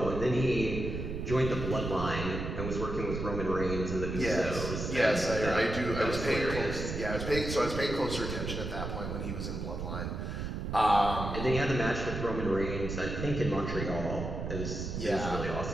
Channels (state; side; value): noise; right; rumble, 4 dB below the sound